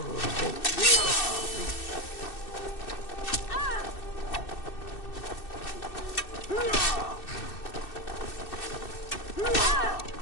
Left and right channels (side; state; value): right; late; 2.6 ms